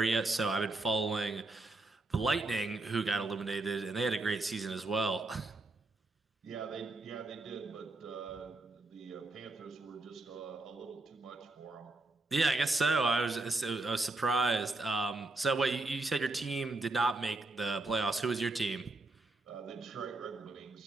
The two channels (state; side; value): quieter; left; 3.1 dB